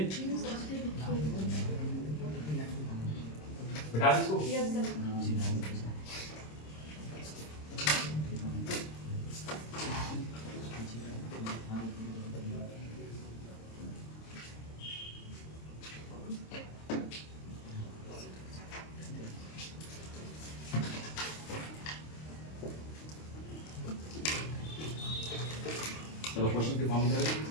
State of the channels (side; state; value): right; late; 26 ms